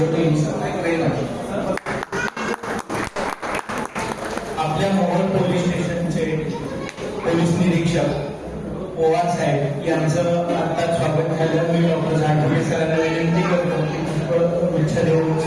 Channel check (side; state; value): both; identical; correlation 1.00